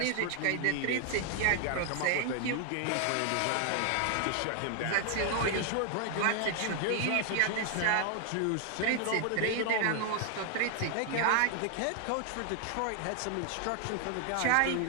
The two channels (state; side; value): different; both; correlation 0.00